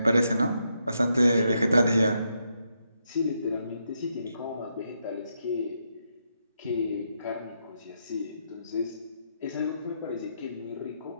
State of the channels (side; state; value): both; inverted; correlation -0.80